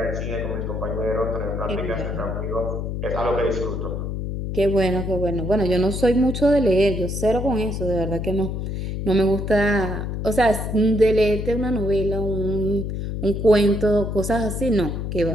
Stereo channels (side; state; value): left; noise; hum, 4 dB below the sound